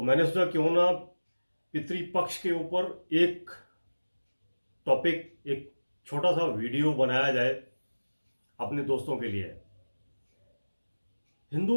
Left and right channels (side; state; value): both; inverted; correlation -1.00